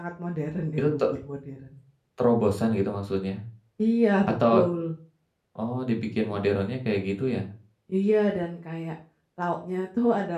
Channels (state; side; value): identical; both; correlation 1.00